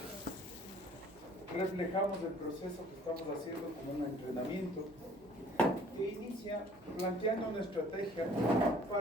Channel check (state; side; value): noise; right; hum, 26 dB below the sound